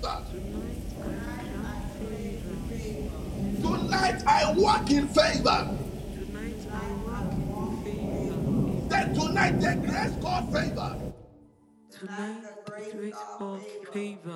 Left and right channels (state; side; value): identical; both; correlation 1.00